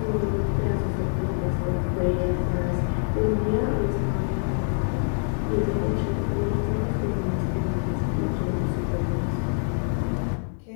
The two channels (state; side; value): silent; right; 61 dB below the other